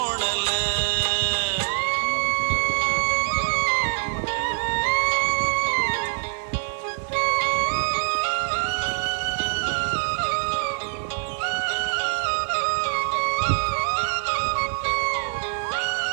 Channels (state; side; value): silent; left; 62 dB below the other